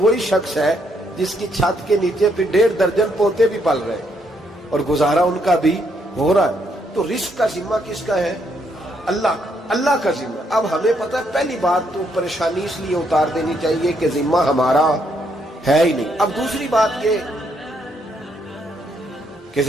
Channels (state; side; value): normal; both; correlation 0.74